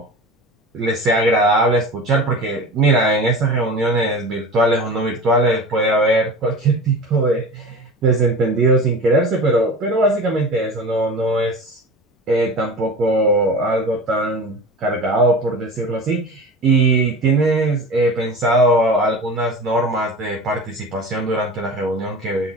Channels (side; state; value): both; normal; correlation 0.33